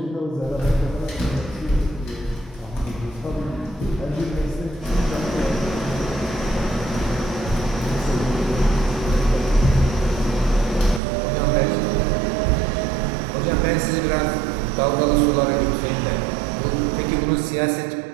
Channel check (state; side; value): drops out; left; at 11.0 s